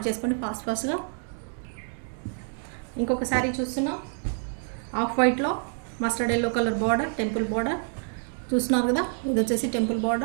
చేసుకోండి ఫాస్ట్గా. ఇంకొక శారీ చూస్తున్నాం, ఆఫ్ వైట్లో mustard yellow colour border, temple border చూస్తున్నారు కదా. ఇది వచ్చేసి టెంపుల్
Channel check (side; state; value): left; silent; 55 dB below the other